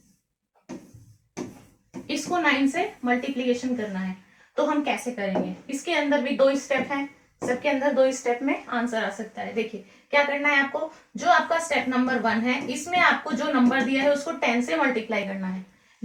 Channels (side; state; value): both; identical; correlation 1.00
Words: इसको 9 से मल्टीप्लीकेशन करना है, तो हम कैसे करेंगे। इसके अंदर भी 2 स्टेप हैं, सबके अंदर 2 स्टेप में आंसर आ सकता है। देखिए क्या करना है आपको, जो आपका स्टेप नंबर 1 है इसमें आपको जो नंबर दिया है उसको 10 से मल्टीप्लाई करना है।